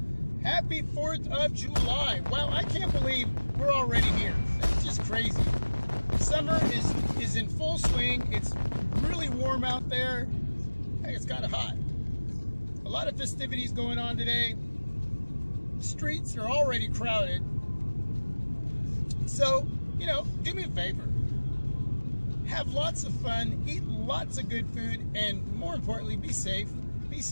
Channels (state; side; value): inverted; both; correlation -1.00